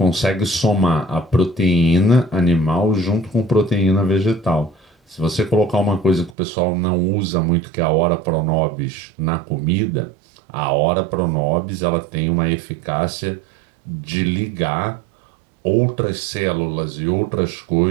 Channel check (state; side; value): drops out; left; at 6.4 s